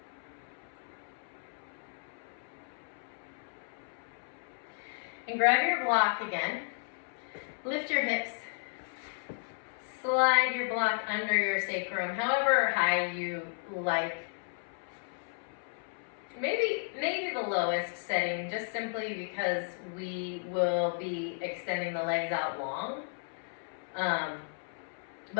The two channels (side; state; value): right; silent; 55 dB below the other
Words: And grab your block again. Lift your hips. Slide your block under your sacrum, however high you like. Maybe the lowest setting, just simply because we will be extending the legs out long.